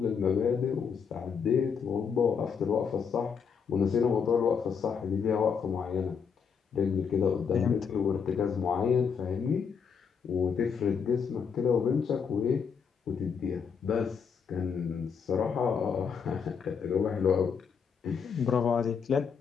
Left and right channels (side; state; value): right; quieter; 6.5 dB